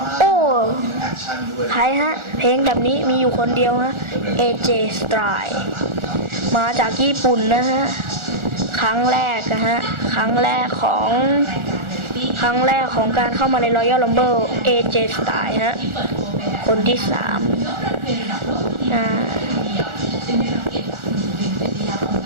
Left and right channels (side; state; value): left; late; 1.4 ms